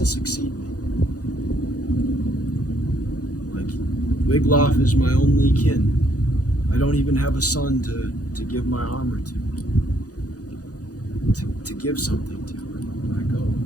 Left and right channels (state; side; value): late; right; 0.67 ms